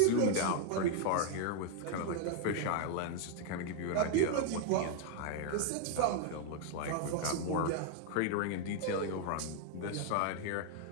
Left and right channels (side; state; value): both; different; correlation 0.00